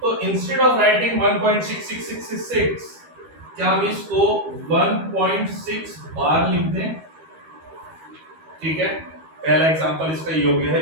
इंस्टेड ऑफ राइटिंग 1.66666 क्या हम इसको 1.6 बार लिख दें, ठीक है। पहला एग्जांपल इसका योग्य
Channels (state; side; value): late; left; 13 ms